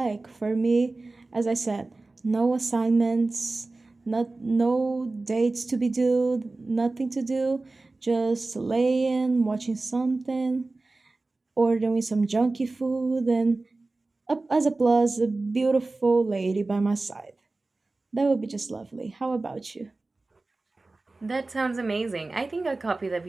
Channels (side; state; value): left; quieter; 3.3 dB